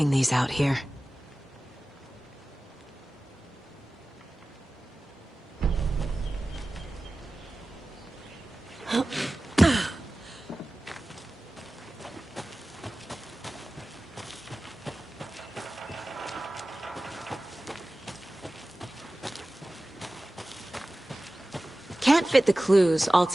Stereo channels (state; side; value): normal; both; correlation 0.96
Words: these out here? Can't fit the clues all